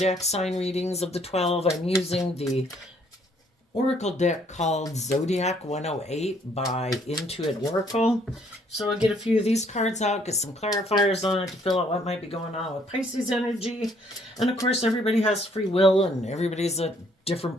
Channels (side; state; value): both; normal; correlation 0.65